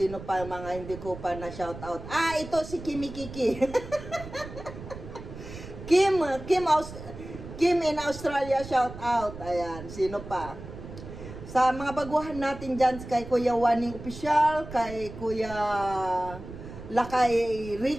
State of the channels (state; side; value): noise; right; rumble, 12 dB below the sound